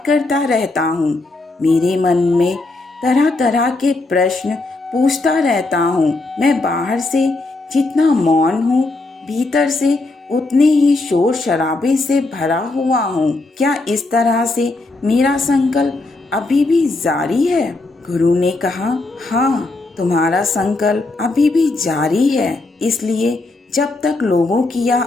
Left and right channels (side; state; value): right; quieter; 3.1 dB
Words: करता रहता हूँ। मेरे मन में तरह तरह के प्रश्न पूछता रहता हूँ। मैं बाहर से जितना मौन हूँ, भीतर से उतने ही शोर शराबे से भरा हुआ हूँ। क्या इस तरह से मेरा संकल्प अभी भी जारी है? गुरु ने कहा, हाँ, तुम्हारा संकल्प अभी भी जारी है। इसलिए जब तक लोगों की यह